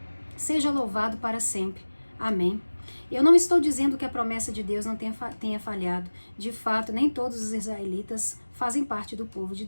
seja louvado para sempre. Amém. Eu não estou dizendo que a promessa de Deus não tenha falhado. De fato, nem todos os israelitas fazem parte do povo de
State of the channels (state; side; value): inverted; both; correlation -1.00